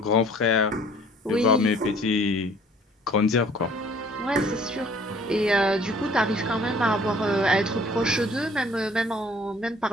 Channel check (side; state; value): both; normal; correlation 0.55